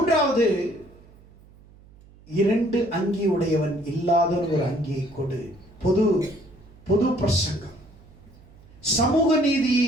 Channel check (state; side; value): noise; right; hum, 25 dB below the sound